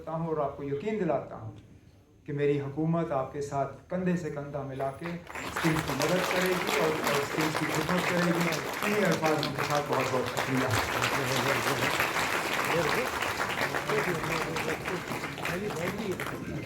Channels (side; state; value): both; identical; correlation 1.00